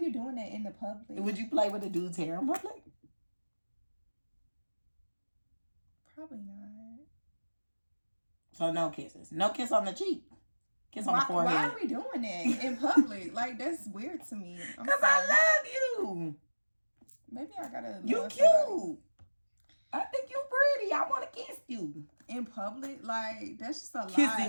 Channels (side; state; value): both; inverted; correlation -1.00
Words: doing that in the public? Would you play with a dude's hair in public? Probably not. So no kisses. No kiss on the cheek. Kiss on the forehead. Why are we doing that in public? Like, that's weird to me. Because I love you. Maybe I gotta. You cute. Somebody. I think you pretty. I want to kiss you. In public? Like, that's just a Kissing lie.